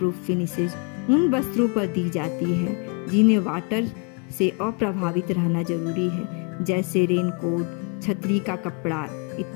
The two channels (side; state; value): right; quieter; 34.0 dB